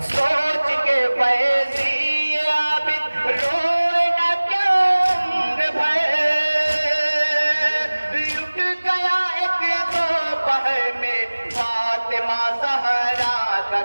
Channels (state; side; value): inverted; both; correlation -1.00